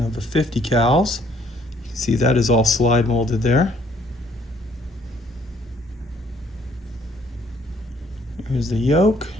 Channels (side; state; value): both; normal; correlation 0.64